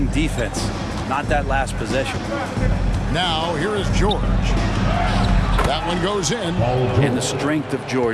defense, not that last possession. Now, here is George. That one goes in. And the strength of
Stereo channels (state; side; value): identical; both; correlation 1.00